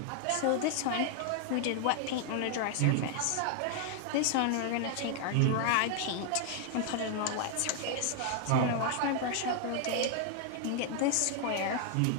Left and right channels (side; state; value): both; different; correlation 0.00